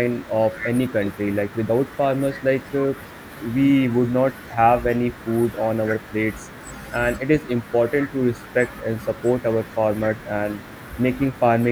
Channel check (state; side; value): identical; both; correlation 1.00